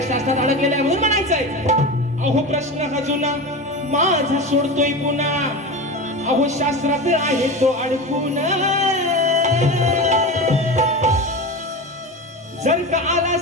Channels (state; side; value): normal; both; correlation 0.26